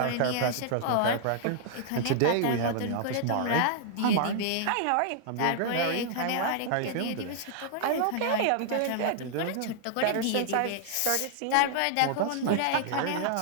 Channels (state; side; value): different; both; correlation -0.01